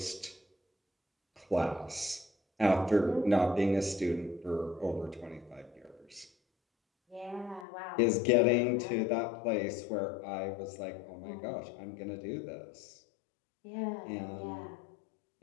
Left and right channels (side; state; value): right; drops out; at 7.7 s